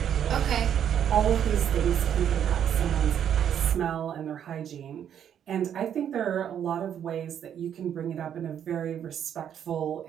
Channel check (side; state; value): left; quieter; 9.2 dB